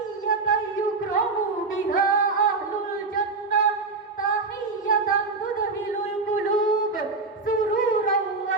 yukramu biha ahlul jannah, tahiyatan tudhilul qulub sururan wa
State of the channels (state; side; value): quieter; left; 3.9 dB